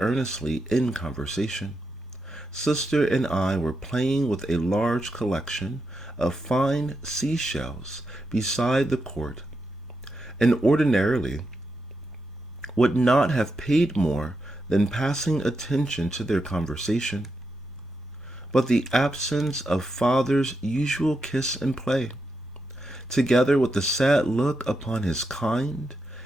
in conversation. Sister and I were playing with a large collection of fine seashells beside the court, and ordinarily would not have paid more than passing attention to their conversation. But the absence of father's usual kiss and play, together with the sad look upon his kind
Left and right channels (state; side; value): normal; both; correlation 0.85